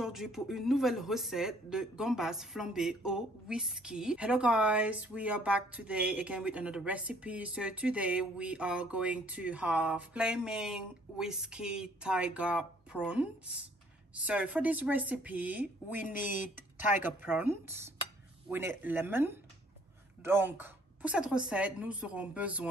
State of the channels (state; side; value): normal; both; correlation 0.61